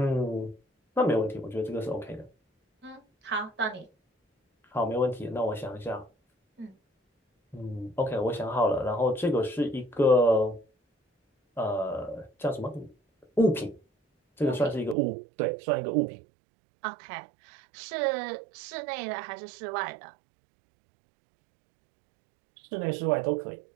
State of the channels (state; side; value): drops out; left; at 15.0 s